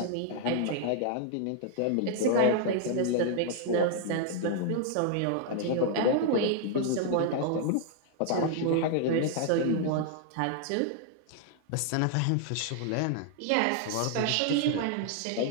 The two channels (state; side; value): different; both; correlation 0.00